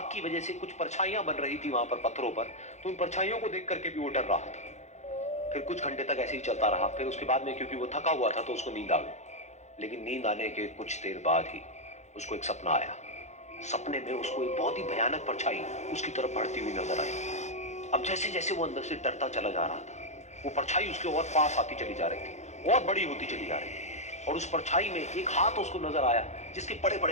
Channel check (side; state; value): right; late; 0.33 ms